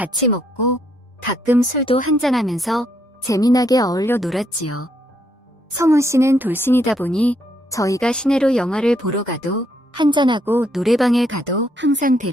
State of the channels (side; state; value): both; normal; correlation 0.73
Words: 먹고 가끔 술도 한잔하면서 재미나게 어울려 놀았지요. 성훈 씨는 돌싱이다 보니 저희가 시내로 영화를 보러 가도 한잔하고 노래방에 가도 항상